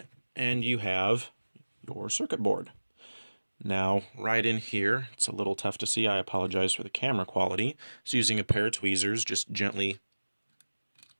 and you have your circuit board. Now, right in here, it's a little tough to see. I apologize for the camera quality. So using a pair of tweezers, just gently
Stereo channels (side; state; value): both; inverted; correlation -1.00